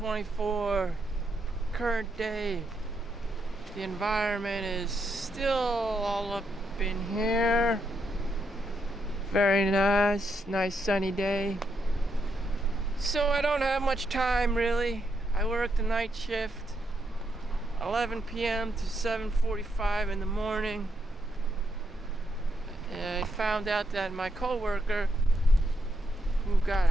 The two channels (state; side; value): normal; both; correlation 0.80